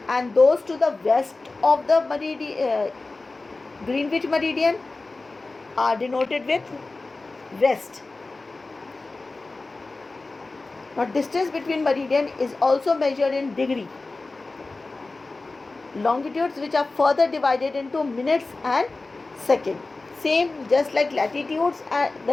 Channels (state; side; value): quieter; right; 3.4 dB